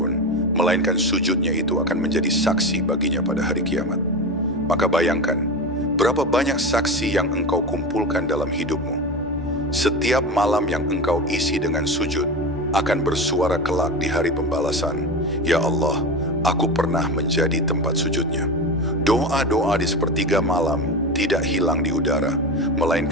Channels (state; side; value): normal; both; correlation 0.23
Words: melainkan sujudnya itu akan menjadi saksi baginya pada hari kiamat. Maka bayangkan, berapa banyak saksi yang engkau kumpulkan dalam hidupmu. Setiap malam yang engkau isi dengan sujud akan bersuara kelak di hari pembalasan. Ya Allah, aku pernah menjadi tempat sujudnya. Doa-doa di sepertiga malam tidak hilang di udara,